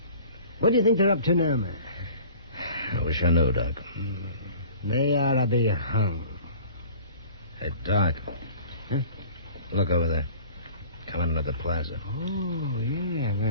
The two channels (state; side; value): inverted; both; correlation -0.46